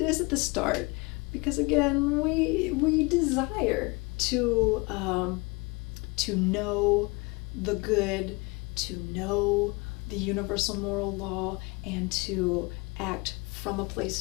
at the start, because again, we desire to know the good, to know the universal moral law, and to act from a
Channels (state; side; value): quieter; right; 26.8 dB